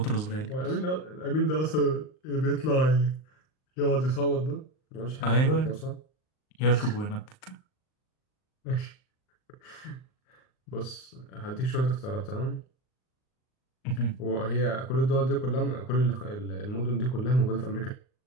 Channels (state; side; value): late; right; 38 ms